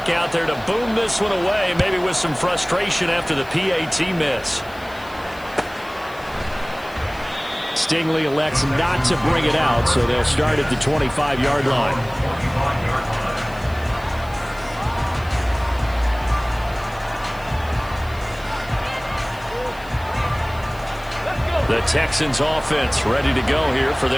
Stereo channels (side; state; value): left; noise; hiss, 23 dB below the sound